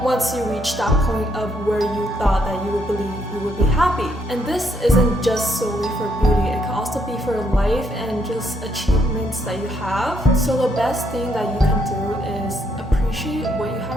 you reach that point of where you thought that you would believe you would be happy. And this isn't just solely for beauty, it can also be for life and just achievements that you have. So the best thing that you can do is appreciate what you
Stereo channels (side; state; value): both; normal; correlation 0.73